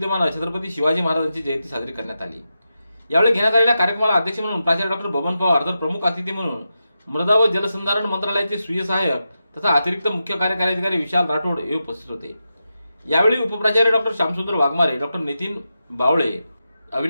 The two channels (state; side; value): inverted; both; correlation -0.89